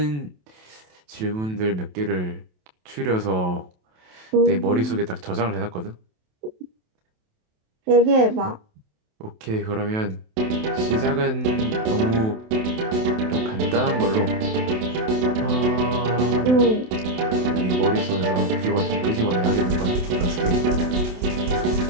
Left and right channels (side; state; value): left; late; 27 ms